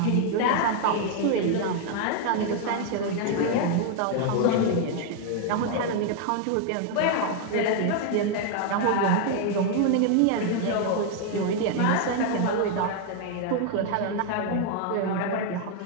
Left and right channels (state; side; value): different; both; correlation 0.00